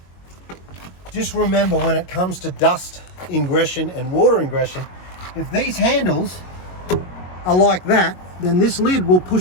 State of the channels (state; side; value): late; right; 22 ms